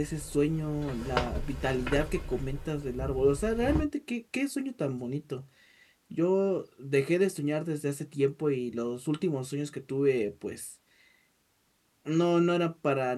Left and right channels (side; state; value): both; identical; correlation 1.00